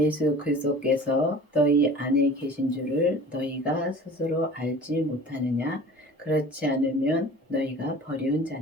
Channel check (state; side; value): normal; both; correlation 0.43